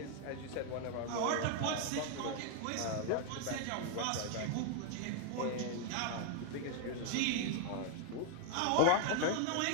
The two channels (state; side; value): different; both; correlation 0.00